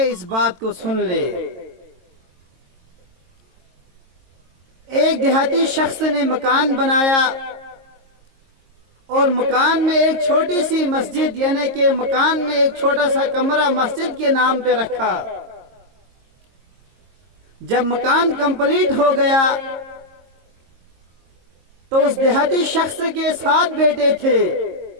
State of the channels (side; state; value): left; late; 22 ms